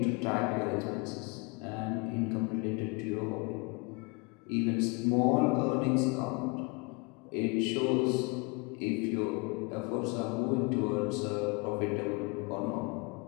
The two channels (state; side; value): quieter; right; 29.5 dB